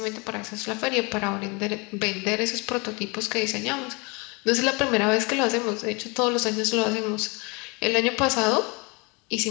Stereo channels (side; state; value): right; quieter; 29.2 dB